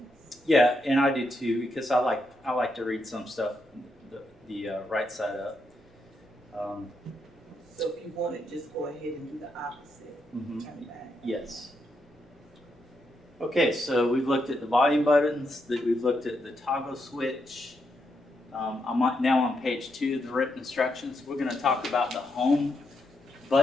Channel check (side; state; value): both; normal; correlation 0.81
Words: Yeah, and I do too, because I like to read some stuff the right side up. So if you want it, just go ahead and do the opposite. Mhm. Turn back. Yes. Okay, so we've looked at the volume buttons, we've looked at the toggle switch. I'm now on page 2 of the written instructions. We're going to talk about the home